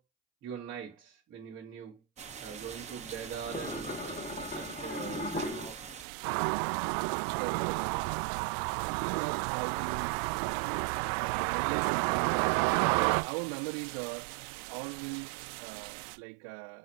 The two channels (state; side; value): drops out; left; at 6.1 s